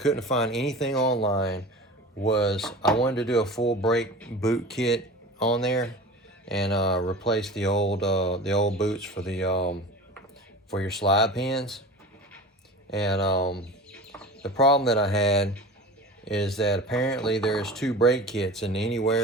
find anything online, was I wanted to do a full brake boot kit on there and replace the old boots for your slide pins. And the problem that I had is that apparently there's two brake kits, and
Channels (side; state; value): both; normal; correlation 0.35